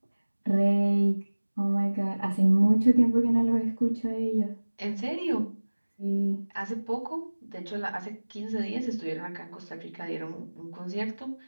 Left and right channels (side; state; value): both; inverted; correlation -1.00